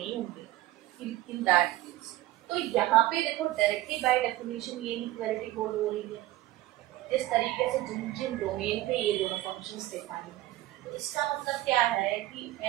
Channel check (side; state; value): left; quieter; 16.1 dB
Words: होंगे इन दैट केस। तो यहाँ पे देखो डायरेक्टली बाय डेफिनेशन ये इक्वालिटी होल्ड हो रही है इस तरीके से जिन जिन डोमेन पे ये दोनों फंक्शंस डिफाइन है। तो इसका मतलब क्या है कि